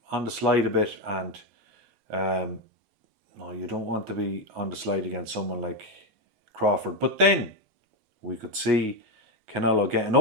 on the slide a bit, and no, you don't want to be on the slide against someone like Crawford. But then we could see Canelo getting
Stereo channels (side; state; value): left; late; 8.3 ms